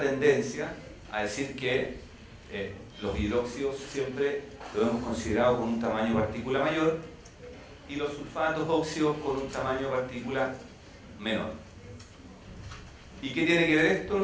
tendencia a decir que los hidróxidos siempre lo hemos considerado con un tamaño de partícula mayor y los sulfatos óxidos con un tamaño de partícula menor. ¿Y qué tiene que ver esto, no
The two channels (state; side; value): identical; both; correlation 1.00